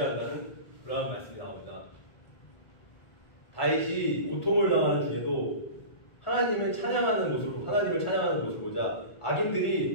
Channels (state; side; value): late; right; 1.5 ms